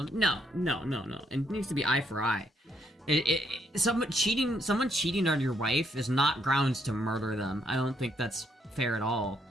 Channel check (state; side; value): normal; both; correlation 0.73